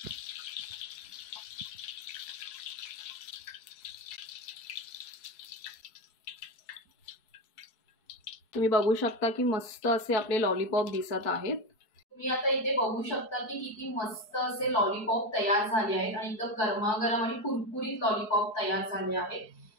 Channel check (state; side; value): late; right; 4.7 ms